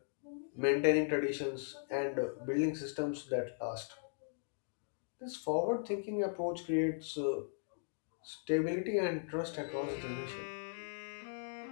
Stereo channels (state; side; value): silent; right; digital silence